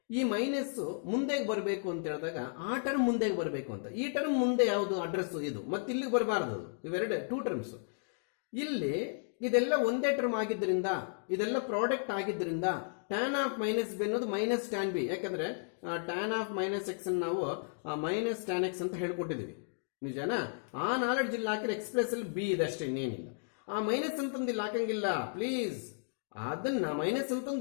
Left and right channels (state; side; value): silent; right; digital silence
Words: ಈ ಮೈನಸ್ಸು ಮುಂದೆಗೆ ಬರಬೇಕು ಅಂತ ಹೇಳಿದಾಗ ಆ ಟರ್ಮ್ ಮುಂದೆಗೆ ಬರಬೇಕು ಅಂತ. ಈ ಟರ್ಮ್ ಮುಂದೆ ಯಾವುದು ಅಡ್ರೆಸ್ಸು ಇದು, ಮತ್ತು ಇಲ್ಲಿಗೆ ಬರಬಾರ್ದು. ಇವೆರಡು 2 ಟರ್ಮ್ಸು. ಇಲ್ಲಿ ಇದೆಲ್ಲ ಒಂದೇ ಟರ್ಮ್ ಆಗಿದ್ದರಿಂದ, ಇದೆಲ್ಲ ಪ್ರಾಡಕ್ಟ್ ಆಗಿದ್ದರಿಂದ ಟ್ಯಾನ್ ಆಫ್ ಮೈನಸ್ ಬಿ ಅನ್ನೋದು ಮೈನಸ್ ಟ್ಯಾನ್ ಬಿ. ಯಾಕಂದರೆ ಟ್ಯಾನ್ ಆಫ್ ಮೈನಸ್ ಎಕ್ಸ್ ನಾವು ಮೈನಸ್ ಟ್ಯಾನ್ ಎಕ್ಸ್ ಅಂತ ಹೇಳ್ಕೊಟ್ಟಿದ್ದೀವಿ, ನಿಜನಾ? ಆ ನಾಲೆಡ್ಜ್ ಇಲ್ಲಿ ಹಾಕಿದ್ರೆ ಎಕ್ಸ್ಪ್ರೆಸ್ಸಲ್ಲಿ ಬಿ ಇದೆ ಅಷ್ಟೇ, ಇನ್ನೇನಿಲ್ಲ. ಆ ಮೈನಸ್ ಅಂತಂದು ಇಲ್ಲಿ ಹಾಕಂಗಿಲ್ಲ ಪ್ಲೀಸ್. ಅದನ್ನು ಮೈನಸ್